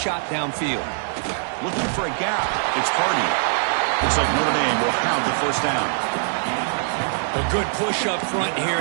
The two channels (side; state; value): left; silent; digital silence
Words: downfield. Looking for a gap. It's Hardy. Looks like Notre Dame will have the first down. A good push up front here